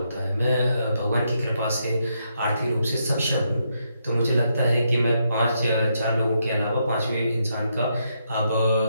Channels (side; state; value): both; inverted; correlation -0.79